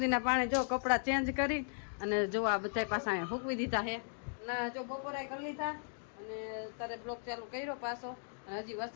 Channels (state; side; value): silent; right; digital silence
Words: પાણી જો કપડા ચેન્જ કરી અને જો આ બધા પાછા અહીંયા ફૂંકવી દીધા છે ના જો બપોરે કરી લીધા અને તારે બ્લોક ચાલુ કર્યો પાછો અને હજી